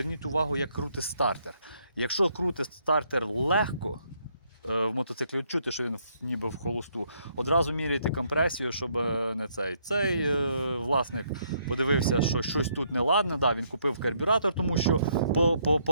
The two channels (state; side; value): inverted; both; correlation -0.71